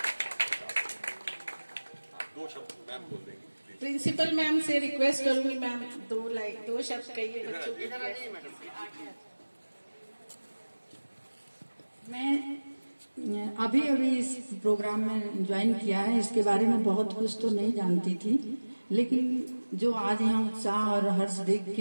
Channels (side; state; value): both; inverted; correlation -1.00